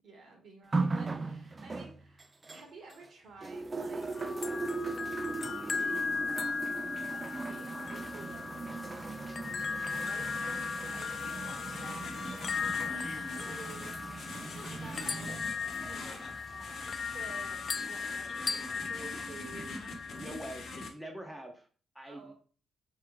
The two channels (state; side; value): normal; both; correlation 0.86